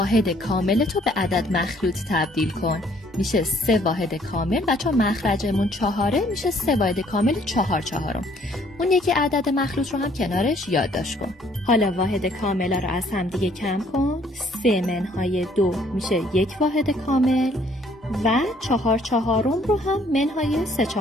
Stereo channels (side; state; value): both; normal; correlation 0.62